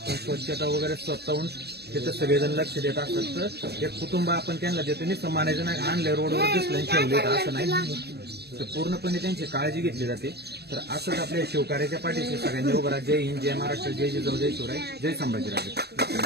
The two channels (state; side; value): late; left; 0.47 ms